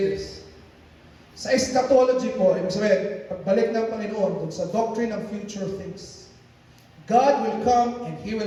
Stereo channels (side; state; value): both; identical; correlation 1.00